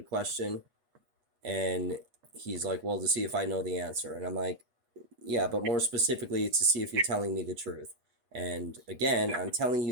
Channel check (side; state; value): left; late; 8.3 ms